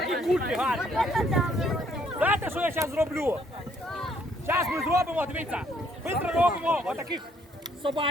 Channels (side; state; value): both; normal; correlation 0.67